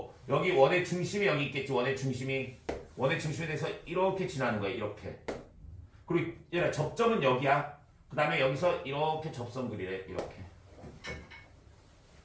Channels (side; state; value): both; identical; correlation 1.00